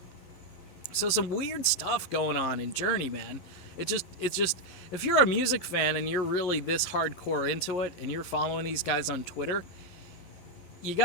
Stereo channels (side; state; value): right; late; 11 ms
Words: So some weird stuff going on in Journey, man. It's just if you're a music fan and you're really this hardcore into it and you're following these guys on Twitter, you